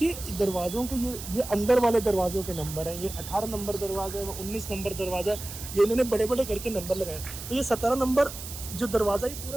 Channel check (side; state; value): right; noise; hiss, 10 dB below the sound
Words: दरवाज़ों के ये अंदर वाले दरवाज़ों के नंबर हैं, ये 18 नंबर दरवाज़ा है, 19 नंबर दरवाज़ा, ये इन्होंने बड़े बड़े करके नंबर लगाए। तो ये 17 नंबर जो दरवाज़ा ये